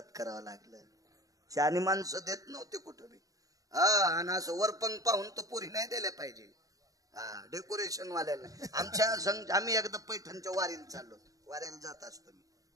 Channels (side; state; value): left; late; 0.17 ms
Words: लागलं. शानी माणसं देत नव्हते कुठं बी. आणि असं वरपंग पाहून तर पुरी नाही दिल्या पाहिजे. डेकोरेशन वाल्याला. आम्ही एकदा पैठणच्या वारीला चाललो, वाऱ्याला जात असतो मी,